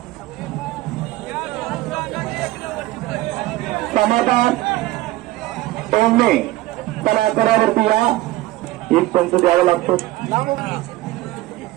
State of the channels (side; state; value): left; quieter; 17.3 dB